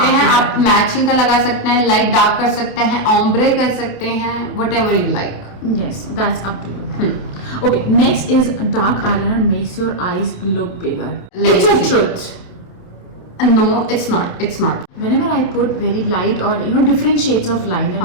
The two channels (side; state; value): right; late; 28 ms